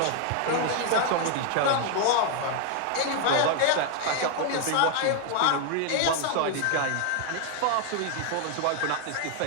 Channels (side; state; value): both; different; correlation 0.00